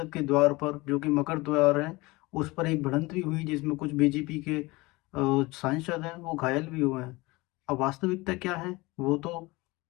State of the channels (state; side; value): quieter; right; 22.6 dB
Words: के द्वार पर, जो कि मकर द्वार है, उस पर एक भिड़ंत भी हुई, जिसमें कुछ बीजेपी के सांसद हैं, वो घायल भी हुए हैं। अब वास्तविकता क्या है, वो तो